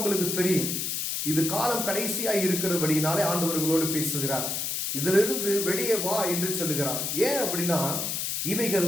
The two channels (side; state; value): left; noise; hiss, 1 dB below the sound